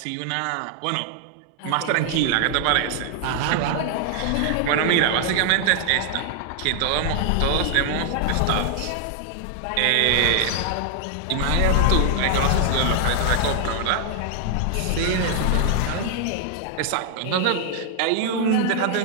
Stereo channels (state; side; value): different; both; correlation 0.00